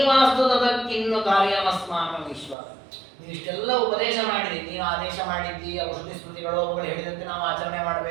ಕಾರ್ಯಮಸ್ಮಾಕಂ ಈಶ್ವರ. ನೀವು ಇಷ್ಟೆಲ್ಲ ಉಪದೇಶ ಮಾಡಿರಿ, ನೀವು ಆದೇಶ ಮಾಡಿದ್ದಿ, ಔಷಧಿ ಸ್ಮೃತಿಗಳು ಅವುಗಳು ಹೇಳಿದಂತೆ ನಾವು ಆಚರಣೆ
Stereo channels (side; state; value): left; drops out; at 2.6 s